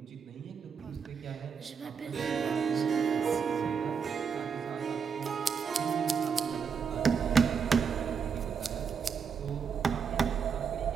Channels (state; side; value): quieter; left; 6.4 dB